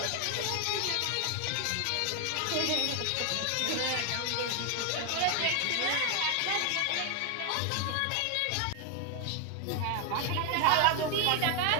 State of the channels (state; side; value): different; both; correlation 0.00